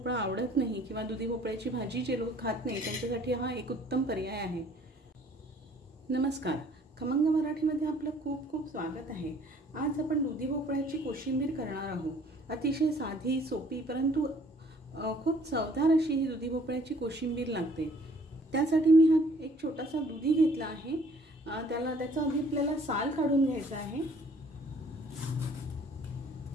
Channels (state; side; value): normal; both; correlation 0.58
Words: आवडत नाही किंवा दुधी भोपळ्याची भाजी जे लोक खात नाही त्यांच्यासाठी हा एक उत्तम पर्याय आहे। नमस्कार, खमंग मराठीमध्ये आपलं खूप खूप स्वागत आहे। आज आपण दुधी भोपळ्याची कोशिंबीर करणार आहोत। अतिशय साधी सोपी परंतु खूप चवदार अशी ही दुधी भोपळ्याची कोशिंबीर लागते। त्यासाठी मी हा एक छोटासा दुधी घेतला आहे। त्याचा आधी आपल्याला साल काढून घ्यायचा आहे।